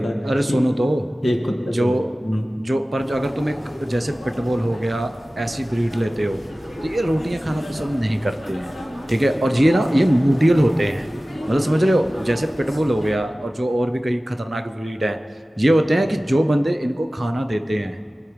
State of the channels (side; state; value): both; normal; correlation 0.97